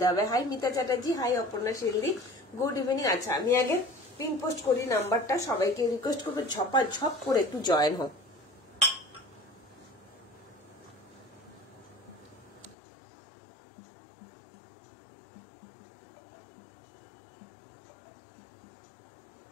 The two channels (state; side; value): drops out; right; at 12.8 s